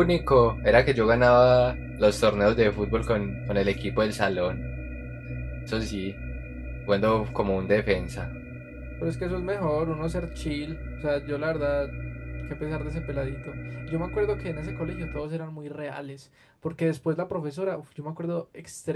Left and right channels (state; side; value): identical; both; correlation 1.00